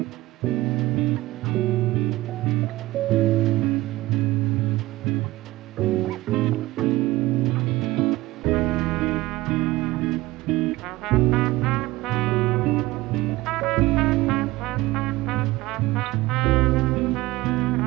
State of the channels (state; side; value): quieter; left; 18.8 dB